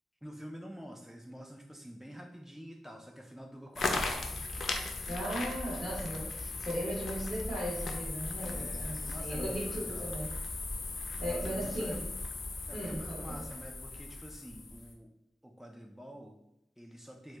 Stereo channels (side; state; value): both; normal; correlation 0.86